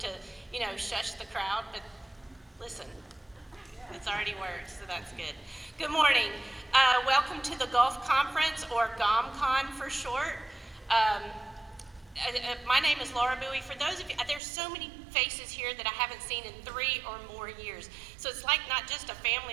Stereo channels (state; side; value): drops out; left; at 14.4 s